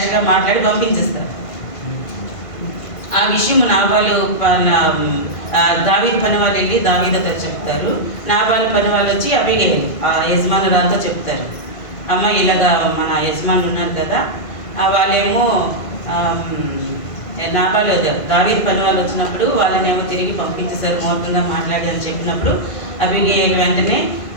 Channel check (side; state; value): right; late; 1.5 ms